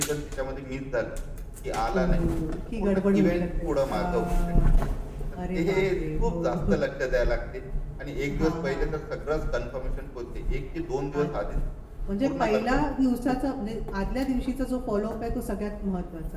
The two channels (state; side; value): identical; both; correlation 1.00